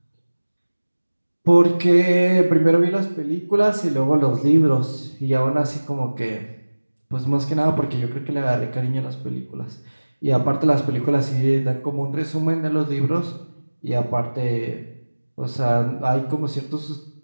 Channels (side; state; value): both; inverted; correlation -1.00